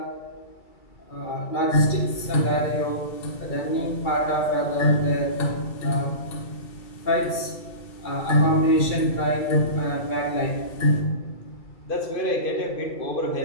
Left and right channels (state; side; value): late; right; 2.3 ms